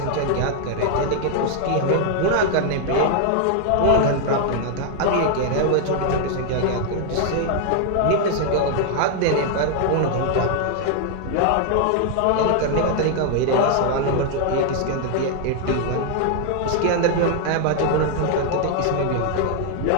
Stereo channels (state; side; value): different; both; correlation 0.00